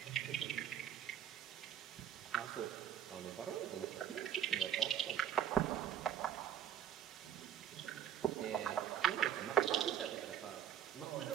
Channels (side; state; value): left; quieter; 9.8 dB